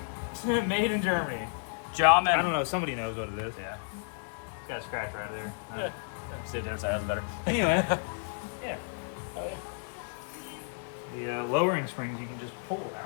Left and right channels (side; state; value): right; silent; 57 dB below the other